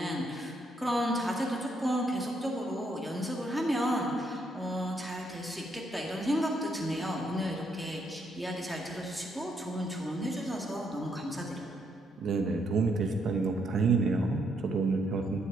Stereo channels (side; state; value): both; normal; correlation 0.74